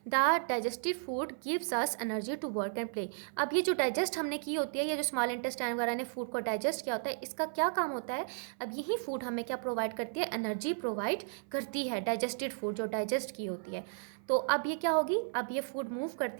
the digestive food gives us energy to work and play. अब ये जो डाइजेस्ट हमने की होती है, ये जो स्मॉल इंटेस्टाइन वगैरह ने फूड को डाइजेस्ट किया होता है, इसका क्या काम होता है, अब यही फूड हमें क्या प्रोवाइड करती है, एनर्जी प्रोवाइड करती है, डाइजेस्टेड फूड जो डाइजेस्ट की होती है। तो अब ये क्या होगी, अब ये फूड मूव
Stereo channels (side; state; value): left; silent; 55 dB below the other